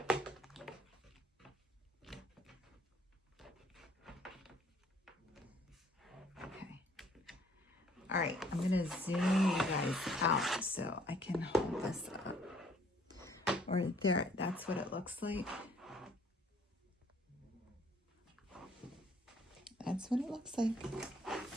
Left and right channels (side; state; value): both; normal; correlation 0.61